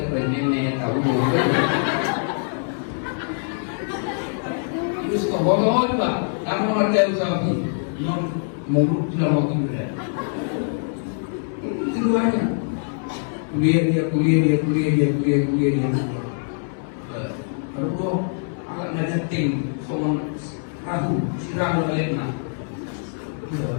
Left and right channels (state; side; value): silent; right; 63 dB below the other